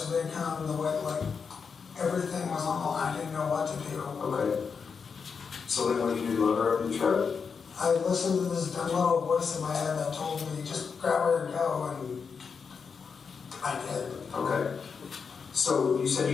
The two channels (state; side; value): quieter; right; 5.8 dB